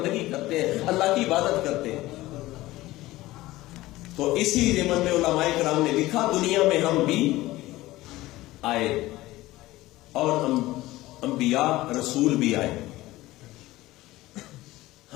کرتے ہیں، اللہ کی عبادت کرتے ہیں. تو اسی ضمن میں علماء کرام نے لکھا دنیا میں ہم بھی آئے اور انبیاء رسول بھی آئے.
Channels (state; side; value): quieter; right; 17.7 dB